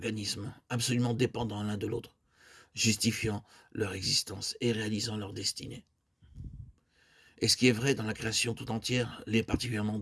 absolument dépendants l'un de l'autre, justifiant leur existence et réalisant leur destinée. Et ce qui est vrai dans la création tout entière l'est particulièrement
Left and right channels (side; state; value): both; identical; correlation 1.00